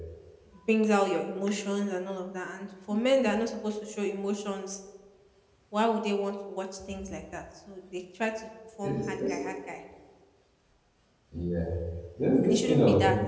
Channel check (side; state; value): both; identical; correlation 1.00